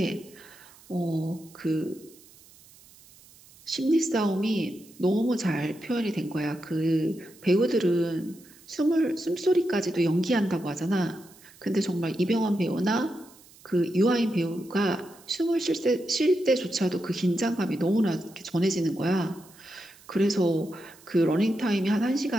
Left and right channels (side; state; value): right; noise; hiss, 25 dB below the sound